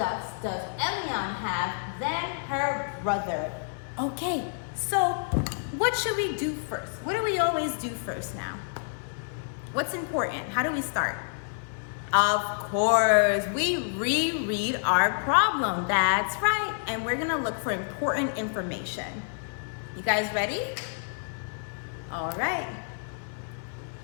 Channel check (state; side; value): silent; right; 59 dB below the other